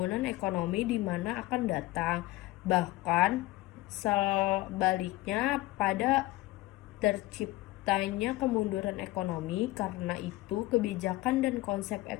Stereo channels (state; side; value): quieter; right; 18.6 dB